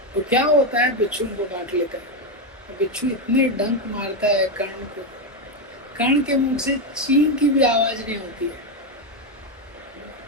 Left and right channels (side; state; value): both; normal; correlation 0.07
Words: तो क्या होता है, बिच्छू उनको काट लेता है। बिच्छू इतने डंक मारता है कर्ण को, कर्ण के मुंह से चीं की भी आवाज नहीं होती है।